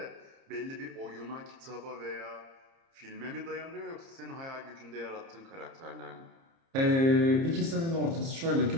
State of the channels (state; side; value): late; left; 30 ms